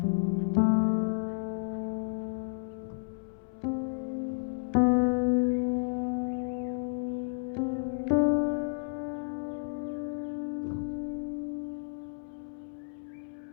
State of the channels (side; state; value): right; silent; 57 dB below the other